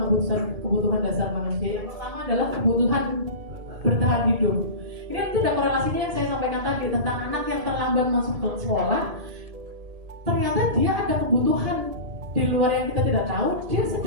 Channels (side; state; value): left; late; 1.7 ms